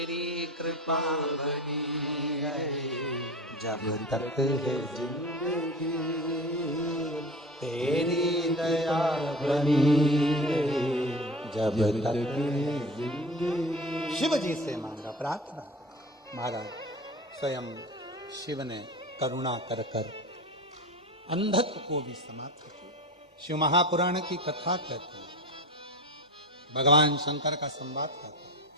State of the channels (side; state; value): both; normal; correlation 0.33